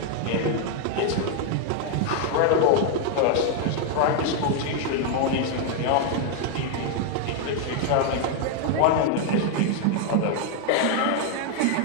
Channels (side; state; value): both; different; correlation 0.00